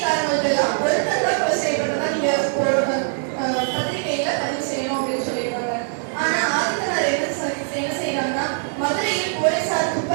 எல்லாம் ஒருத்தர் தான் கொலை செய்யப்பட்டதா நீங்க பத்திரிகையில பதிவு செய்யணும் அப்படின்னு சொல்லிடுவாங்க. ஆனா ஆதித்தனார் என்ன செய்யறாங்கன்னா மதுரையில் போலீசார்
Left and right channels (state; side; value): silent; left; 64 dB below the other